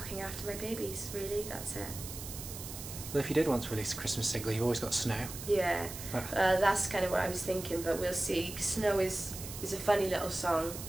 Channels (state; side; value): noise; right; hiss, 10 dB below the sound